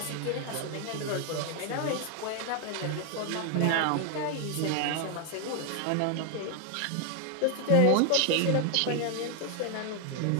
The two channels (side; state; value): both; different; correlation 0.00